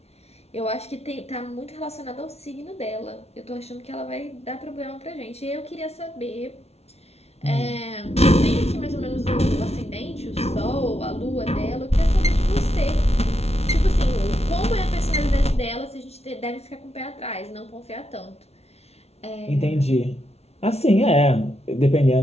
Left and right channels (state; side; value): late; right; 0.31 ms